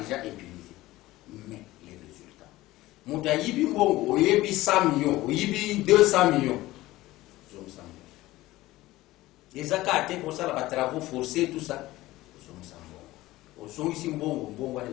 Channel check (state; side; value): quieter; right; 17.5 dB